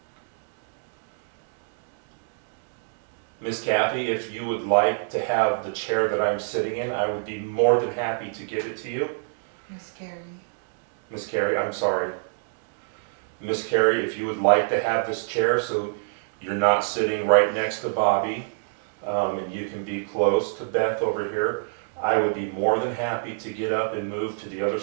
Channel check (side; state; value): left; silent; digital silence